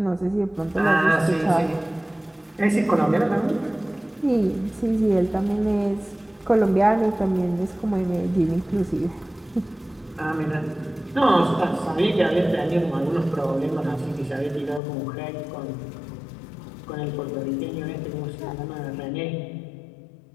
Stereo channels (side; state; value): right; drops out; at 14.8 s